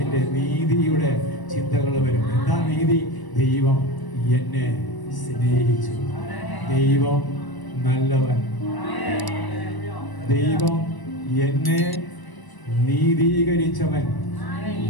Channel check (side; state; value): right; late; 1.0 ms